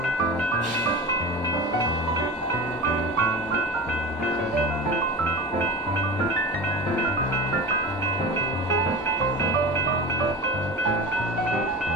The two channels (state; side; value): normal; both; correlation 0.30